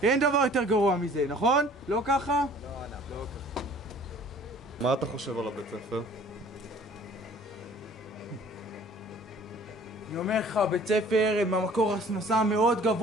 אין דבר יותר גרוע מזה, נכון? לא ככה? לא ככה. מה אתה חושב על הבית ספר? אני אומר לך, בית ספר הם המקור הכנסה מאוד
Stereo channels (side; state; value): both; normal; correlation 0.52